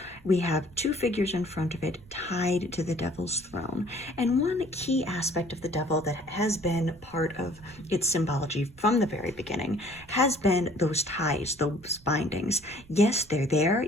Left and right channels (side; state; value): right; noise; rumble, 23 dB below the sound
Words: We have two figures in front of it tied to the devil's throne. And one key aspect of the devil that has been part of its symbology from the very beginning has been those ties, those bindings. Yes, they're there.